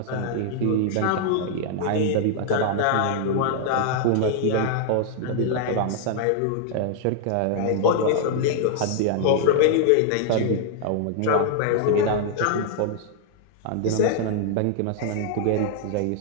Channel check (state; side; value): different; both; correlation 0.00